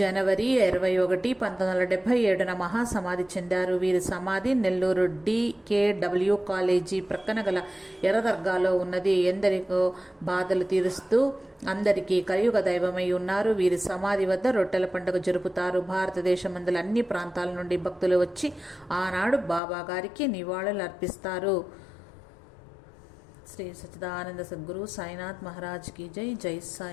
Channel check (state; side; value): drops out; right; at 19.6 s